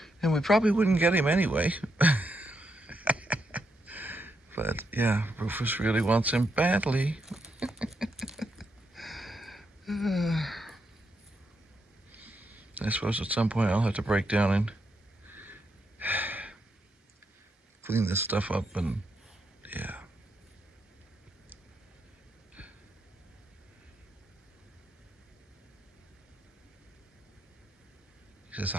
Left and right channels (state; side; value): normal; both; correlation 0.81